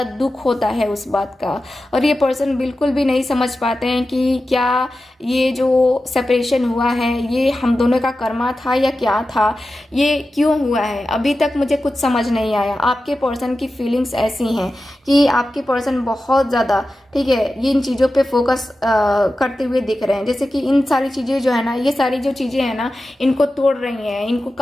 दुख होता है उस बात का, और ये पर्सन बिल्कुल भी नहीं समझ पाते हैं कि क्या ये जो सेपरेशन हुआ है ये हम दोनों का कर्मा था या क्या था, ये क्यों हुआ है, अभी तक मुझे कुछ समझ नहीं आया। आपके पर्सन की फीलिंग्स ऐसी हैं कि आपके पर्सन बहुत ज़्यादा, ठीक है, ये इन चीज़ों पे फोकस करते हुए दिख रहे हैं, जैसे कि इन सारी चीज़ें जो है ना, ये सारी जो चीज़ें हैं ना, इनको तोड़ रही हैं, इनको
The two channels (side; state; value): both; normal; correlation 0.93